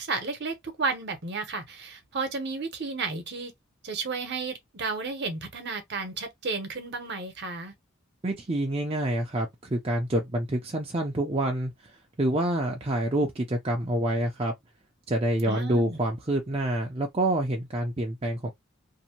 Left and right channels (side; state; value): both; normal; correlation 0.48